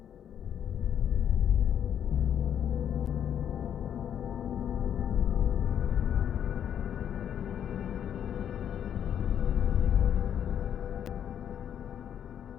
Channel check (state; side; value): quieter; right; 9.2 dB